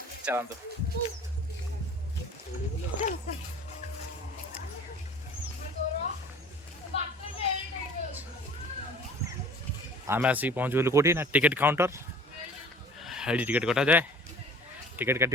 चलते आम आसिक पहुँच गलु कौटी ना टिकेट काउंटर। ये टिकेट कटा जाए टिकेट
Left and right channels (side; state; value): both; normal; correlation 0.46